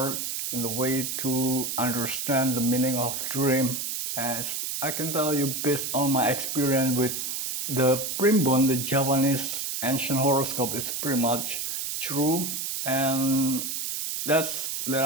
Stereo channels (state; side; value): noise; right; hiss, 3 dB below the sound